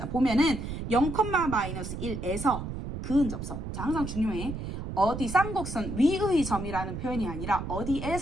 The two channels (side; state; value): right; noise; rumble, 6 dB below the sound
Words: 보면은 0,-1에서 그은접선. 자, 항상 중요해. 어디 쌍곡선 위의 점이라는 표현이 아니라